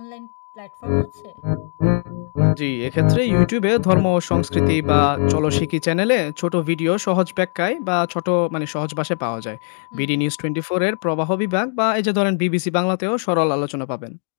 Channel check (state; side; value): silent; right; 66 dB below the other